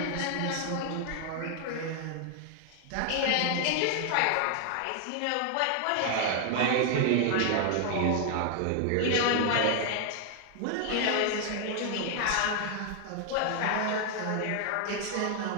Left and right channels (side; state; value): both; different; correlation 0.00